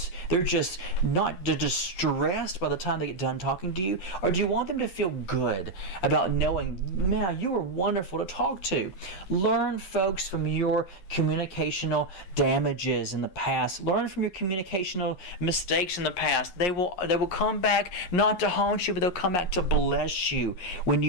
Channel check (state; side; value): late; right; 11 ms